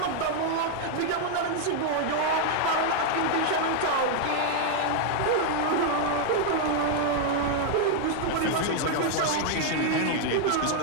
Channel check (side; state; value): both; different; correlation 0.00